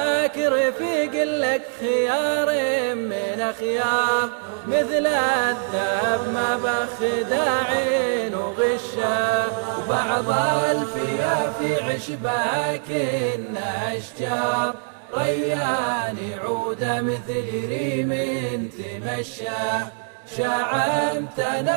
رفيق لك خيار من اخيار، مثل الذهب ما بخداع وغشه. وبعض الفيافي عشبها كنا اشجار، ريان عوده مثل ريم تمشى.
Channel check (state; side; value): silent; left; digital silence